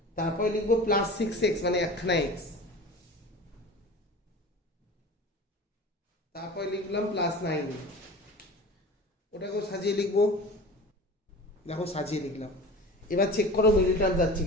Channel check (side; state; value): both; normal; correlation 0.36